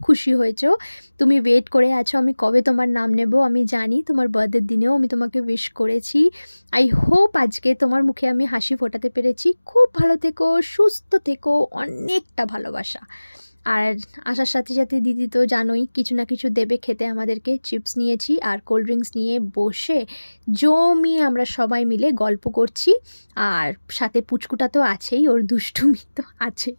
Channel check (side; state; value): both; inverted; correlation -1.00